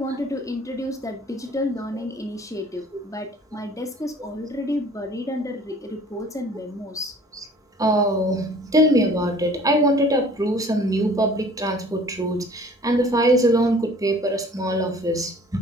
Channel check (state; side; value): normal; both; correlation 0.51